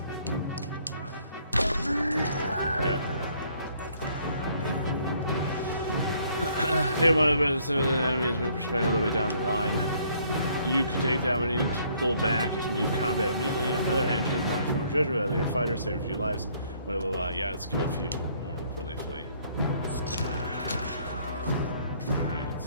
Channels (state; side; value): inverted; both; correlation -0.64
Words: There we go. Take one of the best of the enemies move perspective all the way down the line. You can take that when you need to pull back and leave combat immediately. On the other hand, change not a few more judgment out of your fighter, save a few lives. Blah blah blah. Yeah, let's kill a few more before they flee. Alright.